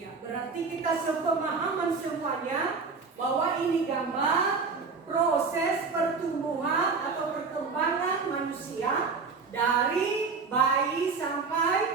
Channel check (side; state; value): left; quieter; 4.7 dB